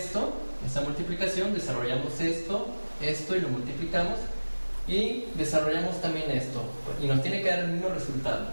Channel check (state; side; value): inverted; both; correlation -1.00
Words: esta multiplicación, desarrollamos esto y lo multiplicamos, y desarrollamos también esto, y nos tiene que dar el mismo resultado.